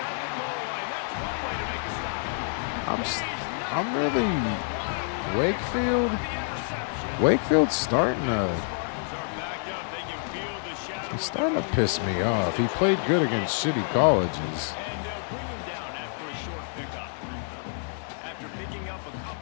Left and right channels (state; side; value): silent; right; 59 dB below the other